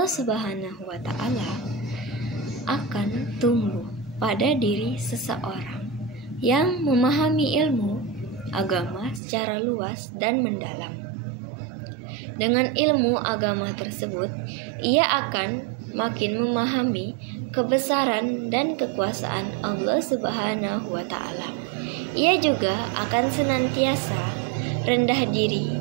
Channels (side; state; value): left; drops out; at 9.2 s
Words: Subhanahu wa Ta'ala akan tumbuh pada diri seseorang yang memahami ilmu agama secara luas dan mendalam. Dengan ilmu agama tersebut, ia akan makin memahami kebesaran dan kekuasaan Allah Subhanahu wa Ta'ala. Ia juga akan senantiasa rendah diri